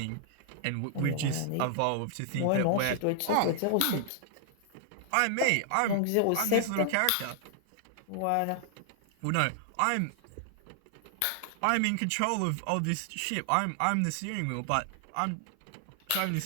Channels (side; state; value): both; different; correlation 0.00